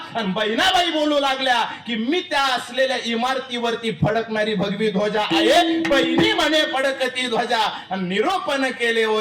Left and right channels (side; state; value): both; identical; correlation 1.00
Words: आणि बहिणाबाई बोलू लागल्या की मी त्या असलेल्या इमारतीवरती फडकणारी भगवी ध्वजा आहे. बहिणी म्हणे फडकती ध्वजा आणि निरोपण केले